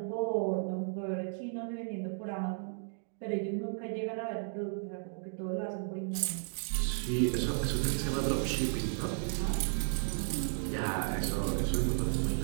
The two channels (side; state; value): left; silent; digital silence